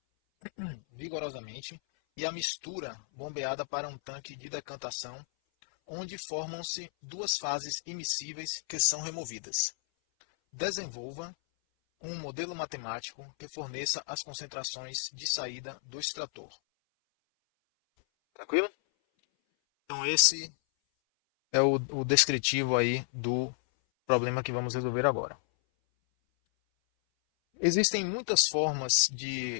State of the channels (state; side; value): silent; right; 56 dB below the other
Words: vigorosamente e a mistura bombeada para um tanque de decantação, onde formam-se duas fases immiscíveis que são removidas. Desenvolva um modelo matemático que forneça as concentrações de saída do extrator. Tranquilo? Então esse é o descritivo aí do problema que vamos resolver agora. Existem muitas formas